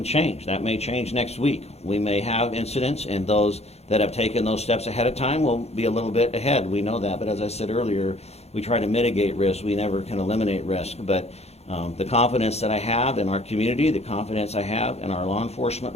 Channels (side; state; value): right; late; 0.31 ms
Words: change. That may change next week. We may have incidents, and those that have taken those steps ahead of time will be a little bit ahead. We know that. But as I said earlier, we try to mitigate risk. We never can eliminate risk. But the confidence that I have in our community, the confidence I have in our law enforcement